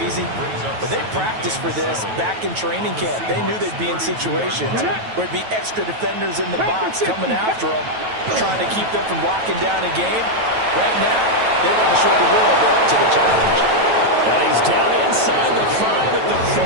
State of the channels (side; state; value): left; late; 9.2 ms